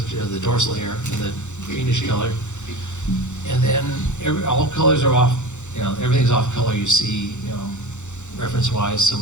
of the dorsal here in the greenish color, and then all colors are off. Everything's off color. You see, reference-wise. So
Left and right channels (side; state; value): right; late; 0.84 ms